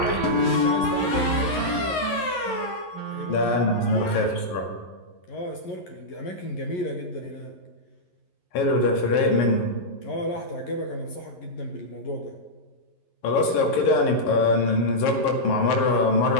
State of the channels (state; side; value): late; right; 11 ms